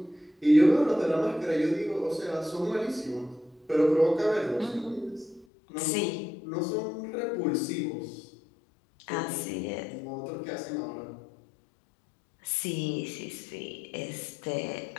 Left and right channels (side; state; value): right; drops out; at 5.5 s